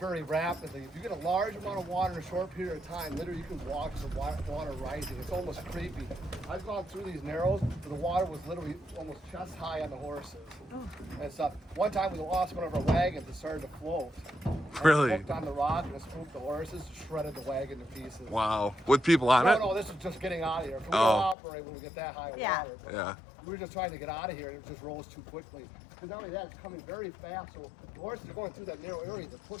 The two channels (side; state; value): right; drops out; at 21.4 s